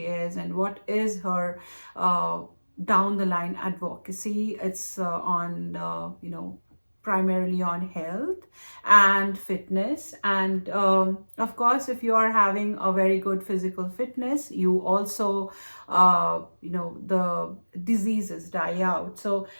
and what is her uh, down the line advocacy. It's on primarily on health and fitness, and of course if you are having a very good physical fitness, you also the diseases die out. So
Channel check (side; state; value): both; inverted; correlation -1.00